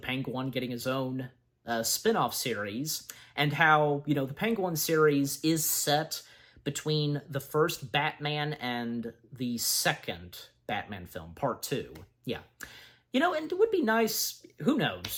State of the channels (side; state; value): both; identical; correlation 1.00